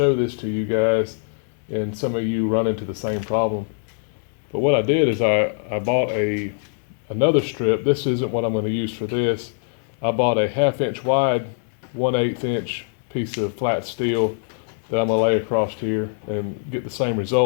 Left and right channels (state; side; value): silent; right; digital silence